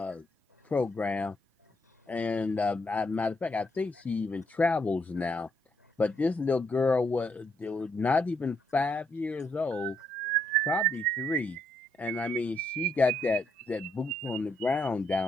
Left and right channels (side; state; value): both; normal; correlation 0.74